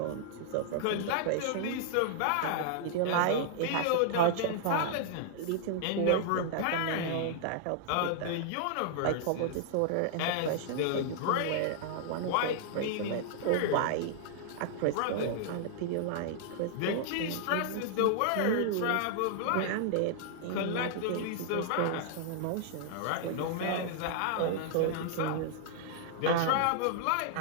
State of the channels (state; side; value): different; both; correlation -0.01